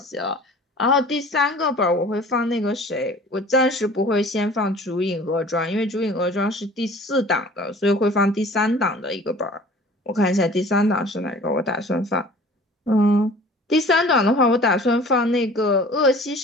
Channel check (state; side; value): normal; both; correlation 0.46